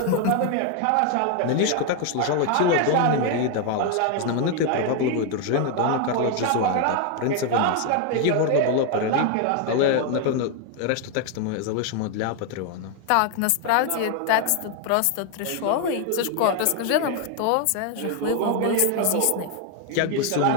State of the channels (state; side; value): different; both; correlation 0.01